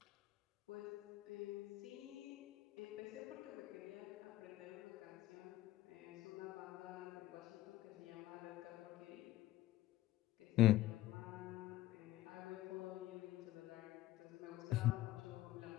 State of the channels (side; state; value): right; quieter; 15.7 dB